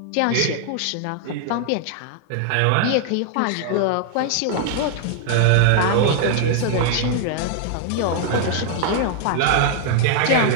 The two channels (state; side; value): different; both; correlation 0.00